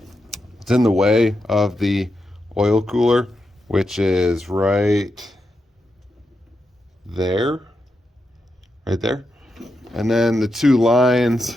it's in the way of the oil cooler, which is right there. And then the two lines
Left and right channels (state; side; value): normal; both; correlation 0.86